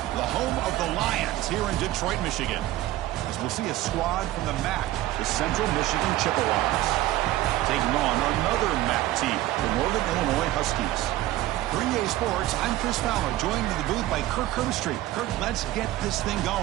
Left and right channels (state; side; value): quieter; left; 15.4 dB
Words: the home of the Lions here in Detroit, Michigan. As we'll see a squad from the MAC, the Central Michigan Chippewas, taking on another MAC team, the Northern Illinois Huskies. For EA Sports, I'm Chris Fowler, joined in the booth by Kirk Herbstreit. Kirk, let's get this thing